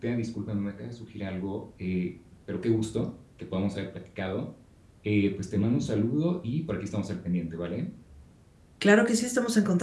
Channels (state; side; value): identical; both; correlation 1.00